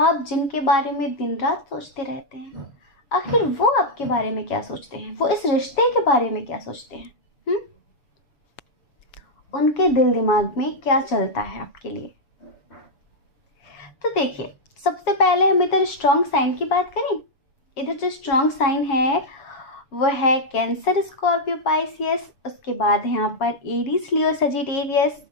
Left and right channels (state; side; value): late; right; 7.0 ms